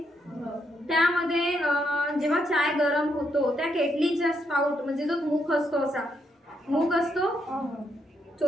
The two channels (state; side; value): normal; both; correlation 0.77